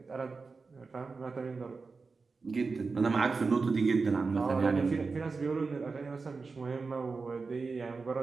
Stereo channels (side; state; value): left; quieter; 4.4 dB